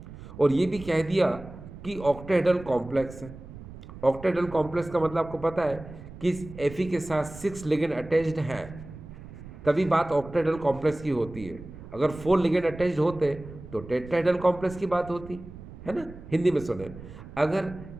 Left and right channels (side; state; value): right; noise; rumble, 15 dB below the sound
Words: और ये भी कह दिया कि ऑक्टेडल कॉम्प्लेक्स है। ऑक्टेडल कॉम्प्लेक्स का मतलब आपको पता है कि इस Fe के साथ 6 लिगेंड अटैच्ड हैं, तभी बात ऑक्टेडल कॉम्प्लेक्स की होती है। अगर 4 लिगेंड अटैच्ड होते तो टेट्राहेड्रल कॉम्प्लेक्स की बात होती है ना। हिंदी में सुने, अगर